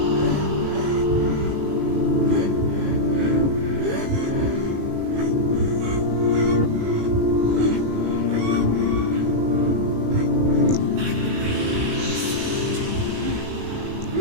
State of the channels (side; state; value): left; late; 18 ms